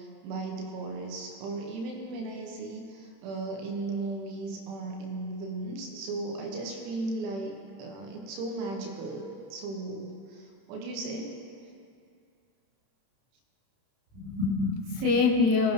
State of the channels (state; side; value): late; left; 31 ms